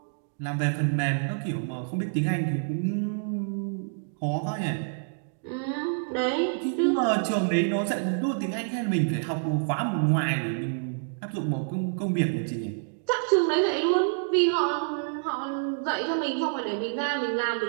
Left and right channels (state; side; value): silent; left; digital silence